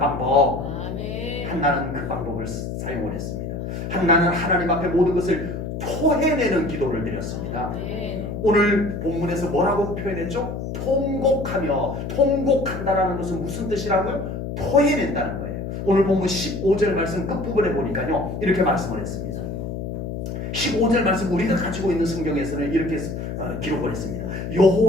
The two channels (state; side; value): noise; left; hum, 5 dB below the sound